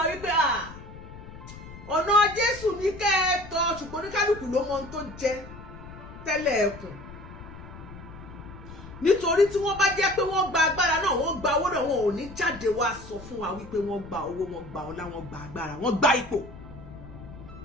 wípé ọ̀nà Jésù ní kẹ́ ẹ tọ̀ ṣùgbọ́n oníkálùkù ló mọ ohun tó jẹ tẹ́lẹ̀ ẹkùn nítorí tí wọ́n bá jẹ́ pé wọ́n gba agbára náà wọ́n gba owó náà wọn ò ní jáde wá sọ fún wa wípé wọ́n gba owó wọ́n gba ọlá wọ́n gba agbára wọ́n gba ipò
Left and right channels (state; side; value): noise; left; rumble, 15 dB below the sound